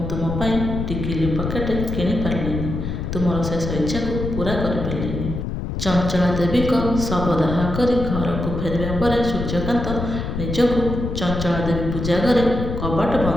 ତୁମ ପାଇଁ ଟିକିଲି ପକେଟ କିଣିପାରିଲିନି, ତୁମର ଶେଷ ଇଚ୍ଛାକୁ ପୂରା କରିପାରିଲିନି। ଚଞ୍ଚଳା ଦେବୀଙ୍କ ଶବଦାହ କରି ଘରକୁ ଫେରିବା ପରେ ସୂର୍ଯ୍ୟକାନ୍ତ ନିଜକୁ ଚଞ୍ଚଳା ଦେବୀ ପୂଜା ଘରେ କବାଟ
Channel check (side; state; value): left; noise; rumble, 4 dB below the sound